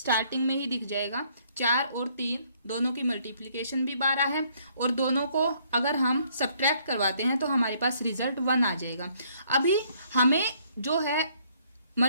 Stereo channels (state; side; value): inverted; both; correlation -0.65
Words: में ही दिख जाएगा 4 और 3 दोनों की मल्टीप्लिकेशन भी 12 है और दोनों को अगर हम सब्ट्रैक्ट करवाते हैं तो हमारे पास रिजल्ट 1 आ जाएगा। अभी हमें जो है